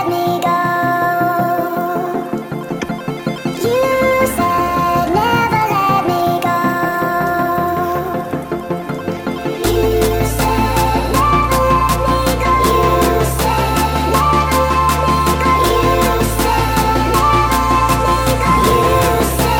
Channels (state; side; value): identical; both; correlation 1.00